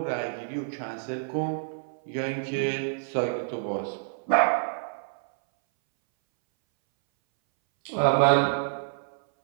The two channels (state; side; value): silent; left; 60 dB below the other